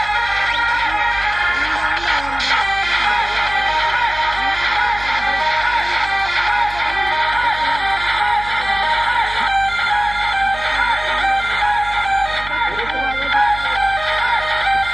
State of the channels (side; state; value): right; noise; hum, 14 dB below the sound